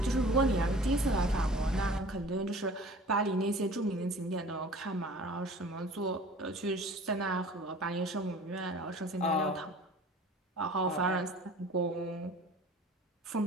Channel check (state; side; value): normal; both; correlation 0.45